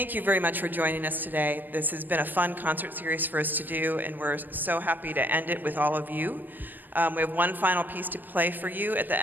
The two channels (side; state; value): left; late; 0.090 ms